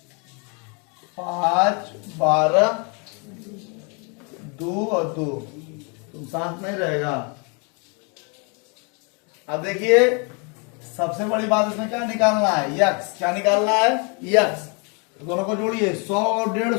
5, 12, 2 और 2। तुम साथ नहीं रहेगा। अब देखिए सबसे बड़ी बात इसमें क्या निकालना है? यक्स। क्या निकालना है? यक्स। तो दोनों को जोड़िए, 100 और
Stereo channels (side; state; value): right; quieter; 34.7 dB